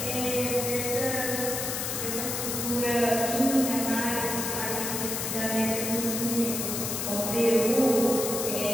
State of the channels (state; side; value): noise; left; hiss, 3 dB below the sound